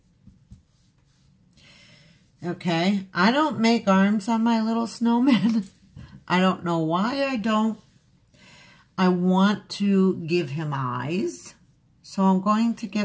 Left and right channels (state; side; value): identical; both; correlation 1.00